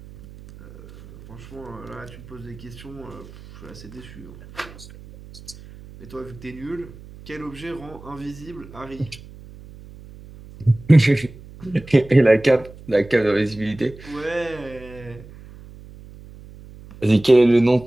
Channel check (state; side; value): noise; right; hum, 18 dB below the sound